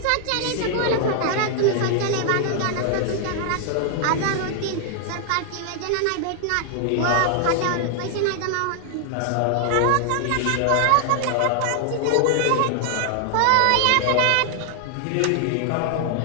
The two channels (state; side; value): different; both; correlation 0.00